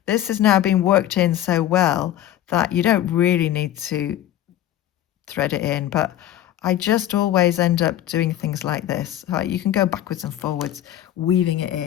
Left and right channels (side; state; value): right; quieter; 12.3 dB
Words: this has now been worked in so well that you don't really need to thread it in, but I just always end up doing things like this. You can go backwards and forwards, weaving it